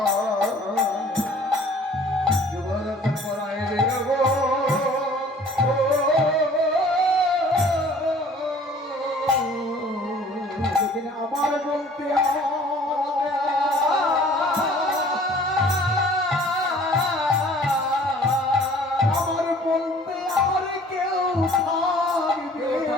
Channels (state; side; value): normal; both; correlation 0.52